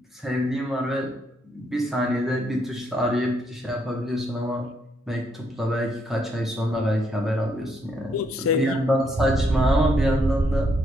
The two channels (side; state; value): both; normal; correlation 0.74